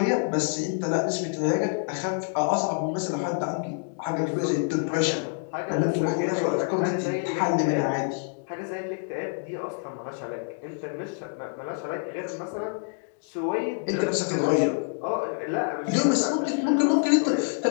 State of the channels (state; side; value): silent; right; 60 dB below the other